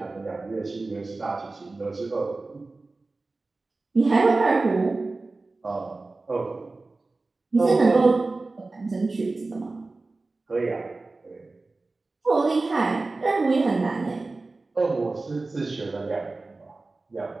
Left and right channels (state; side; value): quieter; left; 3.4 dB